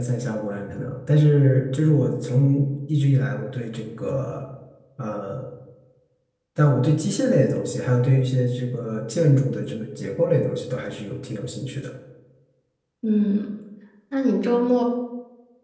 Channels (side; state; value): both; identical; correlation 1.00